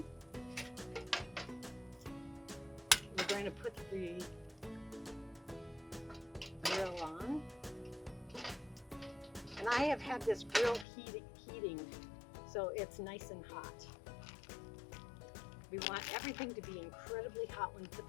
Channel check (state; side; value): drops out; right; at 10.9 s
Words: We're going to put the grill on. And I have had this grill heating, so it's nice and hot. We want everything to be incredibly hot when we put